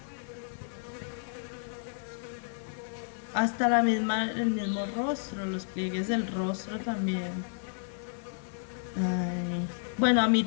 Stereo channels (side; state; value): right; silent; digital silence